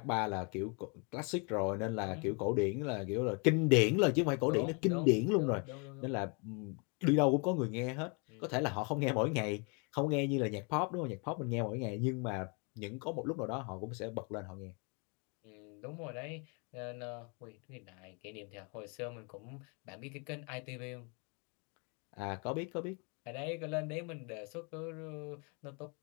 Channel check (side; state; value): right; quieter; 34.3 dB